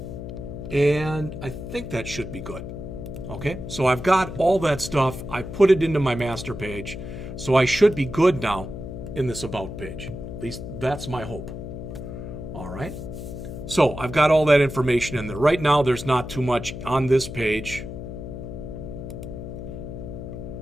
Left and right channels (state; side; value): noise; left; hum, 8 dB below the sound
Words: And I think that should be good. Okay, so I've got all that stuff. I put it into my master page. So I should be good now in this About page. At least that's my hope. All right. So I've got all that information in there. Right now there's not too much on this page.